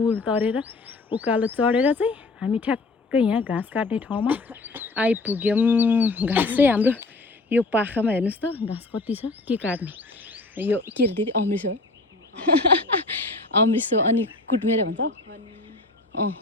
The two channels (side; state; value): right; quieter; 3.3 dB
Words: तरेर उकालो चढेर चाहिँ हामी ठ्याक्कै यहाँ घाँस काट्ने ठाउँमा आइपुग्यौँ। घाँस चाहिँ हाम्रो यो पाखामा हेर्नुहोस् त घाँस कति छ के काट्ने यो के अरे दिदी अमृत हो अमृत अनि कुटमेरे भन्छ